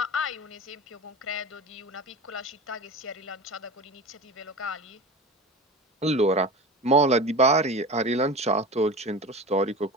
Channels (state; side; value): normal; both; correlation 0.31